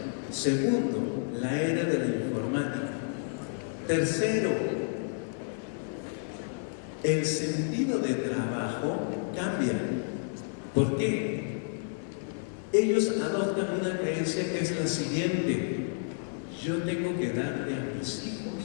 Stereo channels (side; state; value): right; silent; 57 dB below the other